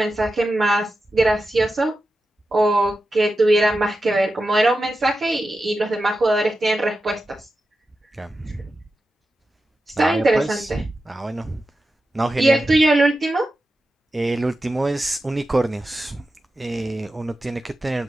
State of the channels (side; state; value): both; normal; correlation 0.91